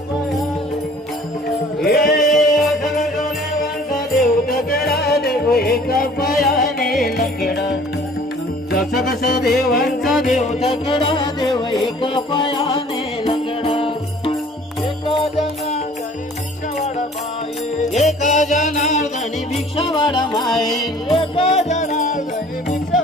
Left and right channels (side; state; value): both; normal; correlation 0.52